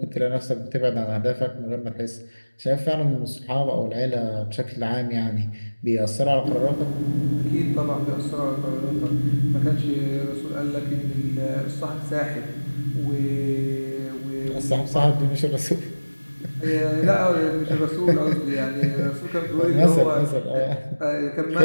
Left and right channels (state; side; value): inverted; both; correlation -1.00